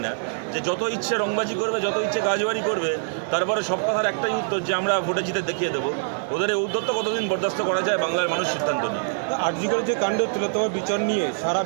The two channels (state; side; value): silent; left; 62 dB below the other